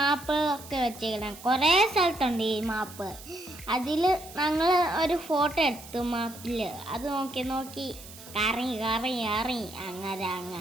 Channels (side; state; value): right; noise; hiss, 17 dB below the sound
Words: വെച്ചേക്കണം. കുറേ സ്ഥലത്തുണ്ട് ഈ മാപ്പ്. അതിൽ ഞങ്ങൾ ഒരു ഫോട്ടോ എടുത്തു മാപ്പിൽ. അത് നോക്കി കറങ്ങി അങ്ങനെ